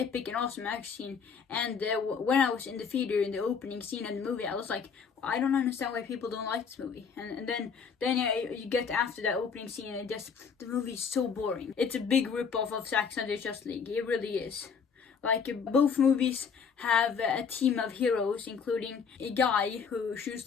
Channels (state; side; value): quieter; right; 6.2 dB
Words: and awesome action scene. And when I was in the theater in the opening scene of the movie, I was like, I don't understand why people don't like this movie. And then you get after that opening scene, and the movie is so boring. It's a big rip-off of Zack Snyder's Justice League. It really is. Like, both movies have a team of heroes, including a guy who shoots